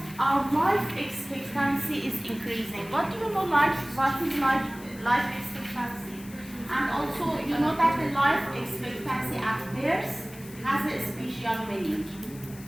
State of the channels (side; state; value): left; noise; hiss, 19 dB below the sound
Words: our life expectancy is increasing. What do you know? What is life expectancy? And also, you know that the life expectancy at birth has a special meaning.